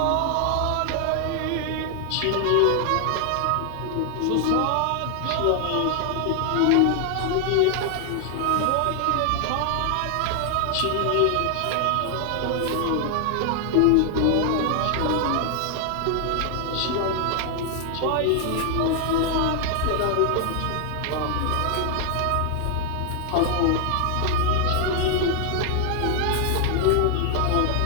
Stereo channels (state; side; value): different; both; correlation 0.00